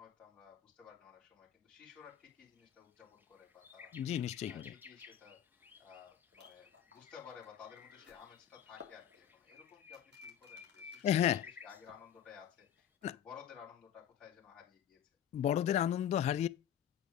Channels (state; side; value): quieter; right; 10.1 dB